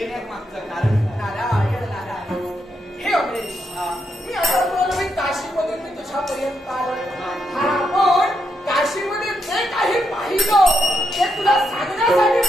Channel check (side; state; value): both; normal; correlation 0.81